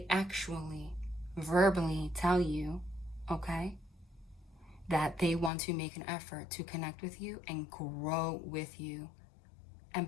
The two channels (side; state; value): right; drops out; at 5.5 s